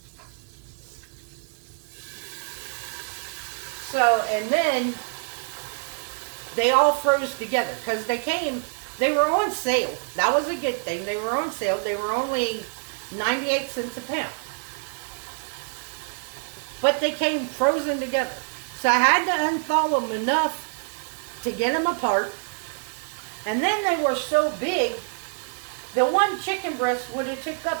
So, and then they all froze together because they came They were on sale. That was a good thing. They were on sale. They were only 98 cents a pound. But they came frozen together. So I had to unthaw them enough to get them apart. And then they were so big, the one chicken breast would have took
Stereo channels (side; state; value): left; silent; digital silence